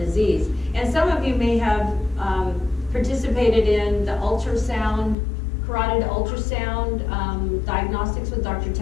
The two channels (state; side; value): drops out; right; at 5.2 s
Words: And some of you may have participated in the ultrasound, carotid ultrasound diagnostics with Dr.